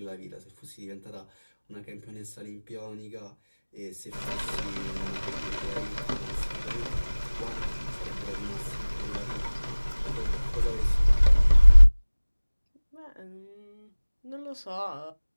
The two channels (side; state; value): both; inverted; correlation -1.00